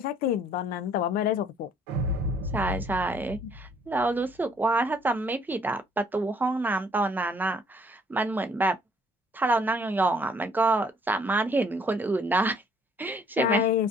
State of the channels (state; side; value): normal; both; correlation 0.61